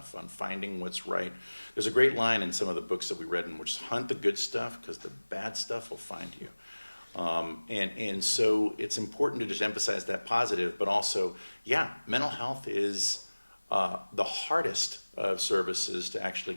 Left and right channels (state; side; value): inverted; both; correlation -1.00